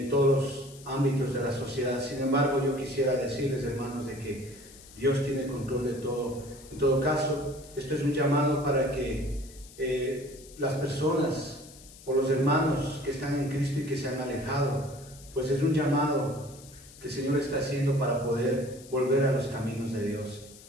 todos los ámbitos de la sociedad. Sin embargo, yo quisiera decirles, hermanos, de que Dios tiene control de todo. En todo caso, esto es un llamado para que las personas o los hermanos que están en Cristo y que se han alejado, pues es un llamado que el Señor está haciendo para poder volver a los caminos de Dios.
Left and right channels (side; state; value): left; noise; hiss, 20 dB below the sound